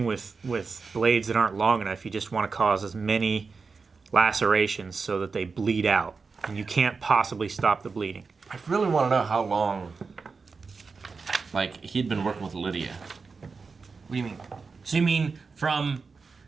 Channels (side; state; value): left; quieter; 4.7 dB